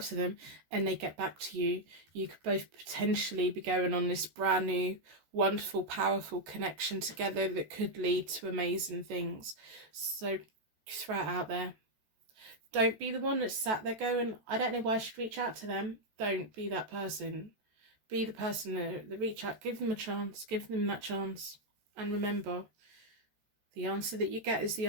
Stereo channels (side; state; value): left; late; 14 ms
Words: to them and they get back to you, you could both potentially be going on this brand new, wonderful, powerful connection together that could lead to amazing things. So throw it out there. Don't be the one that's sat there going, I don't know why I should reach out to them. Don't be that person. Be the person that reach out. Give them a chance. Give them that chance. And remember, the answer that you get is the